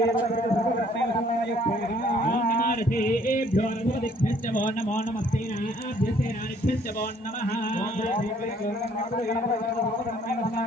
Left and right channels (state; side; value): normal; both; correlation 0.61